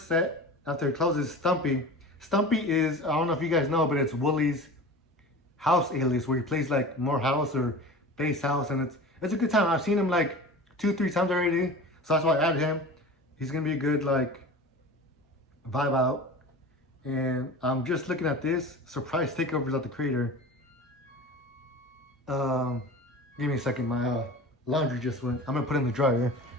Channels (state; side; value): normal; both; correlation 0.36